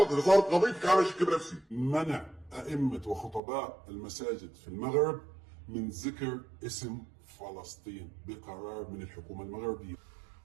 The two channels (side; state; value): left; drops out; at 3.4 s